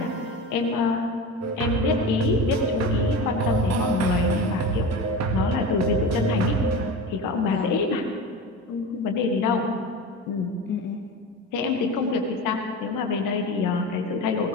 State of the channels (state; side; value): normal; both; correlation 0.28